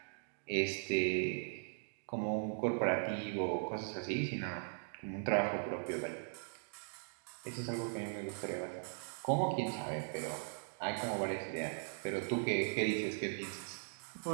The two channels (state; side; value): silent; left; digital silence